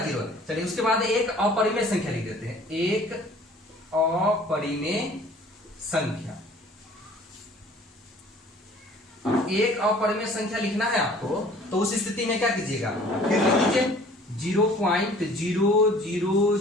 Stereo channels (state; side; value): normal; both; correlation 0.51